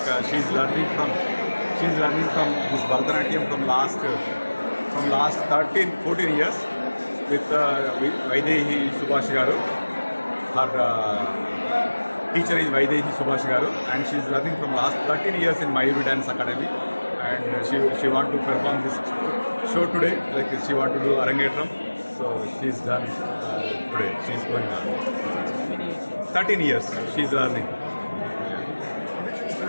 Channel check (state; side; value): inverted; both; correlation -1.00